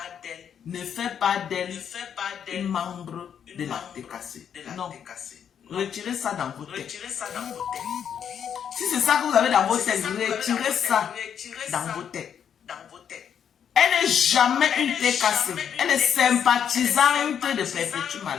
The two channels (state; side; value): quieter; right; 8.3 dB